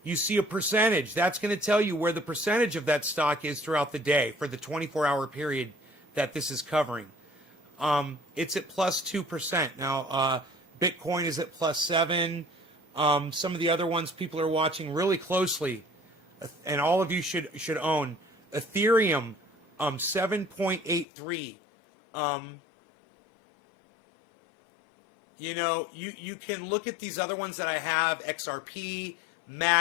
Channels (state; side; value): drops out; right; at 21.1 s